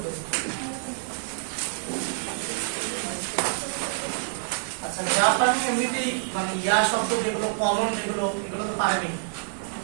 আচ্ছা জাপানি এমনিতেই মানে ইয়া শব্দ যেগুলো কমন যেগুলো এগুলো তো পারেনি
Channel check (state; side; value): silent; left; 59 dB below the other